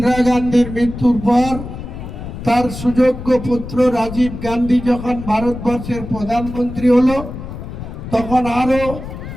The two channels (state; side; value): noise; left; rumble, 10 dB below the sound